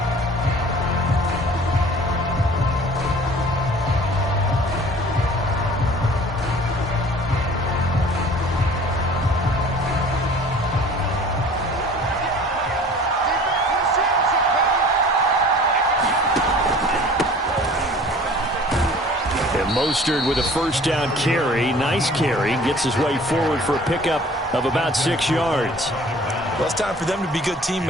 Mostert with a first down carry. Nice carry. Gets his way forward for a pickup of about 6 yards. Well, it's time for them to be good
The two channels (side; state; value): both; normal; correlation 0.48